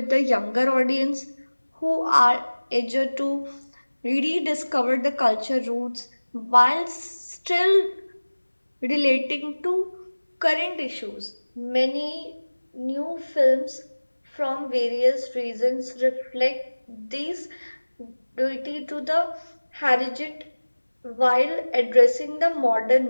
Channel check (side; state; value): both; inverted; correlation -1.00